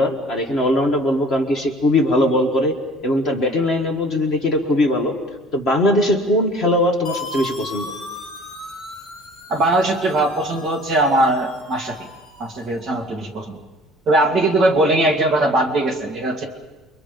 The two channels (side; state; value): both; normal; correlation 0.49